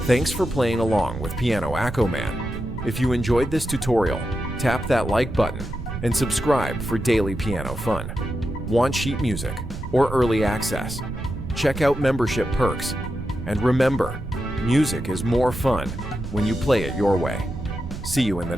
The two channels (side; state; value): right; noise; rumble, 8 dB below the sound